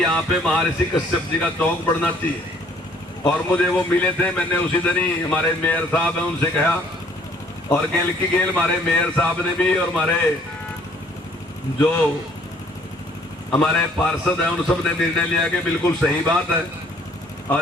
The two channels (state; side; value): normal; both; correlation 0.60